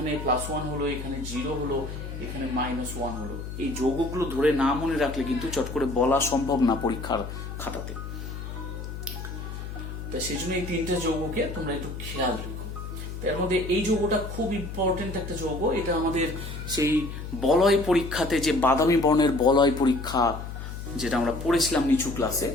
+1 হলো, এখানে 0 হলো, এখানে -1 হলো, এই যৌগগুলো ধরে না মনে রাখলে কিন্তু চট করে বলা সম্ভব না পরীক্ষার খাতাতে। তা সেই জন্য এই 3টে যৌগকে তোমরা একটু খেয়াল রেখো। এর মধ্যে এই যৌগটা খুব ইম্পর্টেন্ট একটা যৌগ, এটা আমাদের সেই বলয় পরীক্ষাতে, যে বাদামি বর্ণের বলয় পরীক্ষা যেটা আমরা পড়েছিলাম নিচু ক্লাসে,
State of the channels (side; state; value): left; noise; hum, 8 dB below the sound